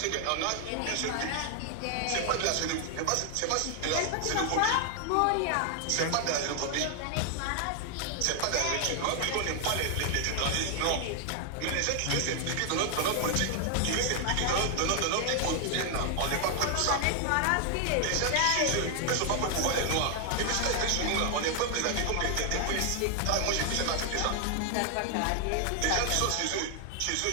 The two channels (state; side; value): different; both; correlation 0.00